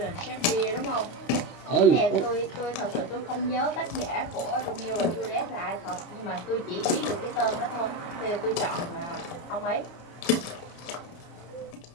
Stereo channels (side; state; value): right; late; 29 ms